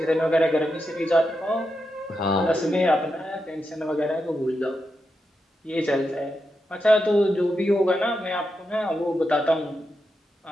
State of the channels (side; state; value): both; normal; correlation 0.87